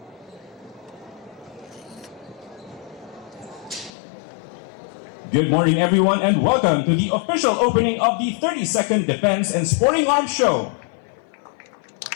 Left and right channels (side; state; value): right; drops out; at 3.9 s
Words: Good morning, everyone, and welcome to the official opening of the 32nd Defense and Sporting Arms Show.